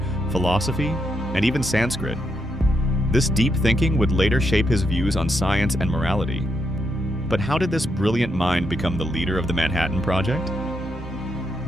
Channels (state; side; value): normal; both; correlation 0.80